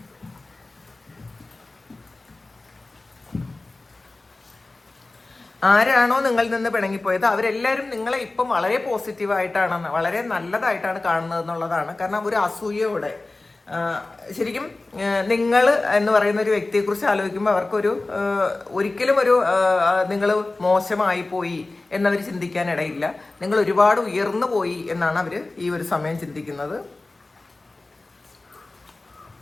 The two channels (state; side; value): quieter; right; 3.1 dB